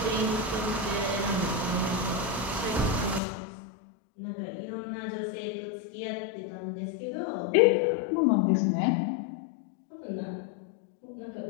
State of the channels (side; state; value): right; drops out; at 3.2 s